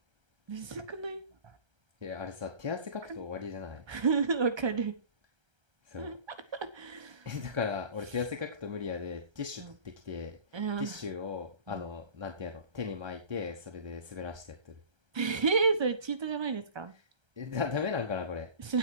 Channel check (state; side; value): late; left; 1.3 ms